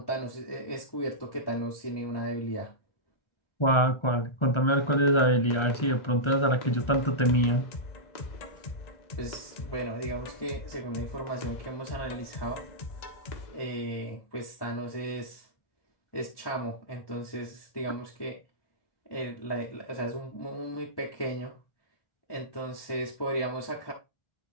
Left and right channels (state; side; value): late; right; 1.3 ms